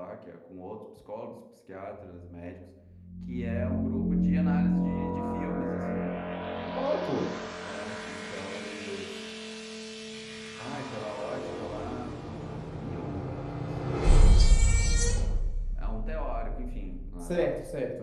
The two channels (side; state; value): both; identical; correlation 1.00